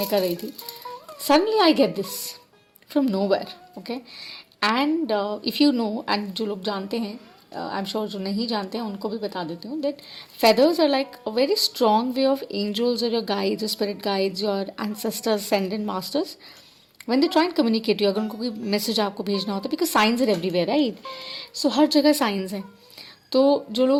कर रही थी. Suddenly I get this from nowhere, okay, and if you know, and जो लोग जानते हैं, I'm sure जो नहीं जानते हैं उनको भी बता देती हूँ that feathers are like a very strong way of angels or your guides, your spirit guides, your ancestors, ascended masters. When they try and communicate you, अगर उनको कोई मैसेज आपको भेजना होता है, because science are everywhere right, so हर जगह science है. तो जो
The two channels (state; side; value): identical; both; correlation 1.00